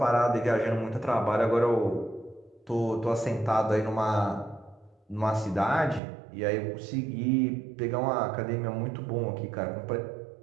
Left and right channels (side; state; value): left; drops out; at 6.0 s